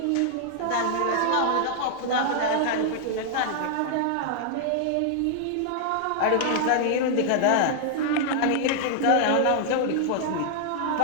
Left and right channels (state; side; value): different; both; correlation -0.01